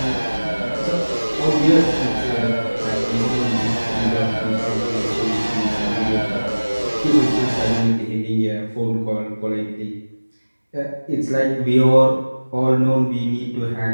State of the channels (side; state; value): both; inverted; correlation -1.00